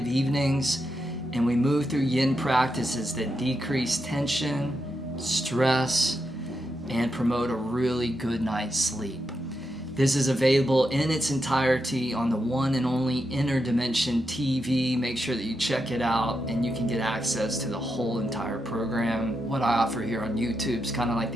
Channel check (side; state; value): both; normal; correlation 0.85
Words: evenings and we move through yin practices that decrease tension, stress, and promote a really good night's sleep. This is available in its entirety on the one and only Inner Dimension TV. Make sure that you check it out and you can get access to the whole entire program. What I offer here on YouTube is kind of like